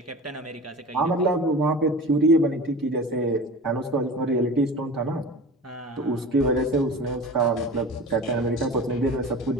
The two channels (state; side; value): normal; both; correlation 0.35